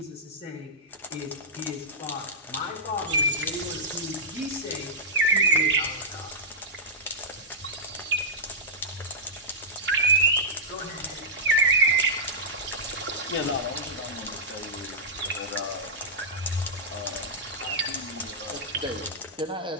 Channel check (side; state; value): both; normal; correlation -0.11